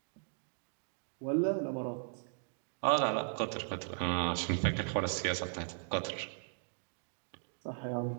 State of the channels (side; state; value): left; silent; digital silence